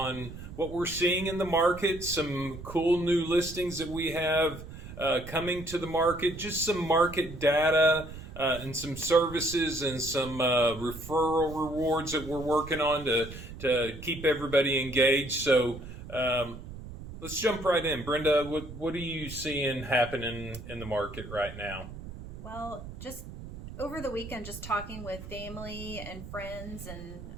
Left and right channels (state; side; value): noise; right; rumble, 12 dB below the sound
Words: what we're seeing in the market, some cool new listings that we have coming to the market, just some market data and some services and some referral rewards that we're working on to keep everybody engaged. So let's jump right in. Brenda, what are you seeing happening in the market right now? Well, just over the weekend, just talking with family and friends, and